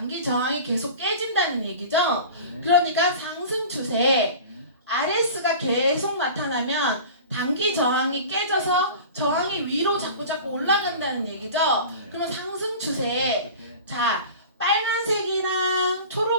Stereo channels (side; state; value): both; inverted; correlation -0.37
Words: 저항이 계속 깨진다는 얘기죠. 그러니까 상승 추세 RS가 계속 나타나면 단기 저항이 깨져서 저항이 위로 자꾸 올라간다는 얘기죠. 그러면 상승 추세. 자, 빨간색이랑